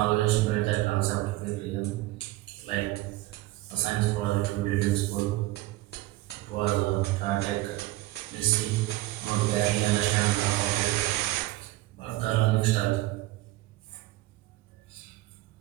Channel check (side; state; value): left; quieter; 17.8 dB